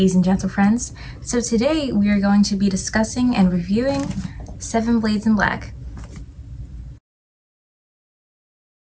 and gentle friends. So today we are going to be discussing and reviewing Seven Blades in Black.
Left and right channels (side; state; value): both; identical; correlation 1.00